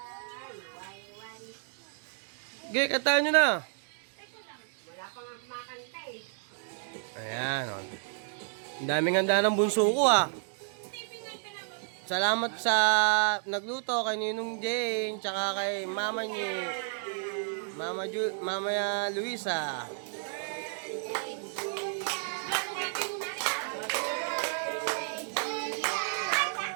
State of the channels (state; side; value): silent; left; digital silence